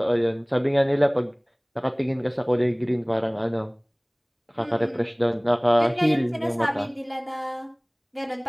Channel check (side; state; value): both; identical; correlation 1.00